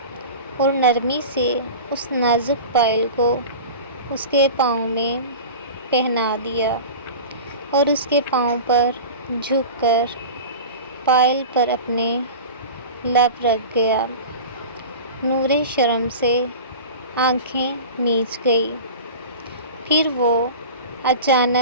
اور نرمی سے اس نازک پائل کو اس کے پاؤں میں پہنا دیا اور اس کے پاؤں پر جھک کر پائل پر اپنے لب رکھ گیا۔ نورے شرم سے آنکھیں میچ گئی۔ پھر وہ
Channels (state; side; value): inverted; both; correlation -0.33